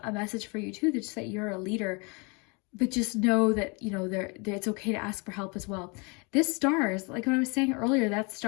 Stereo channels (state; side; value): quieter; right; 30.8 dB